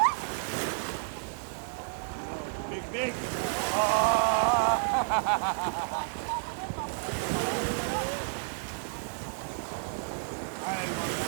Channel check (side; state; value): left; silent; digital silence